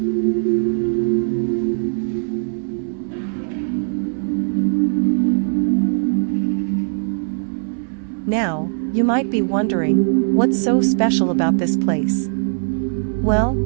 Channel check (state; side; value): silent; left; digital silence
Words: Now, you might be wondering, what's so special about this place? Well,